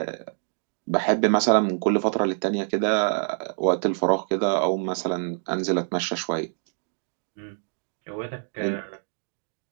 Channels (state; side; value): silent; left; digital silence